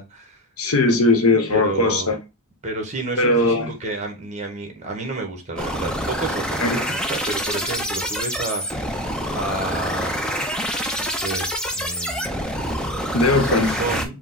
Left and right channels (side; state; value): both; normal; correlation 0.19